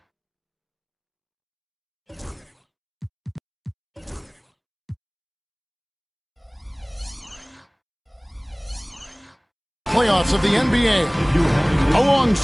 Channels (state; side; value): identical; both; correlation 1.00